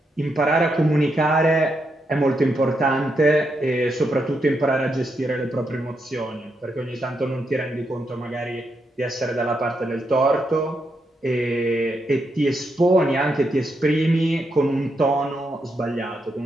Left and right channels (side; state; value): both; normal; correlation 0.81